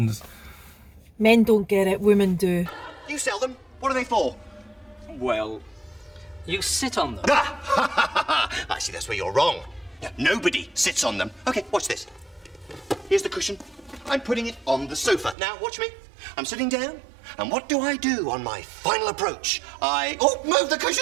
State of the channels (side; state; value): left; drops out; at 15.4 s